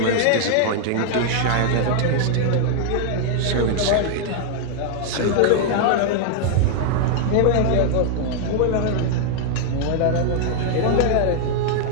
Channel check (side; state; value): both; different; correlation -0.01